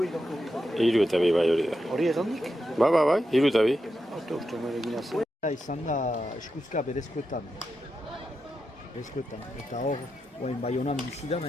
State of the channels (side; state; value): both; normal; correlation 0.87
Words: Hiru eta bi bai hori da. Hori egandik? Bai, hiru eta bi. Uste meregin azen. Izan da eskuzka berezkoetan. Eta hor, Baionan bizi da